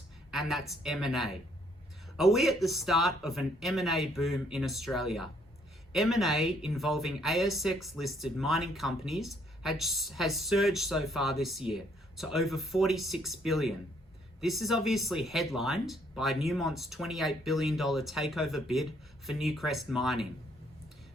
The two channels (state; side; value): normal; both; correlation 0.68